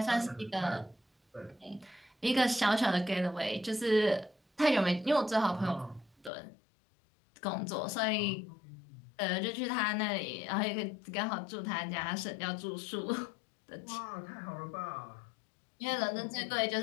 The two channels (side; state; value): right; drops out; at 6.3 s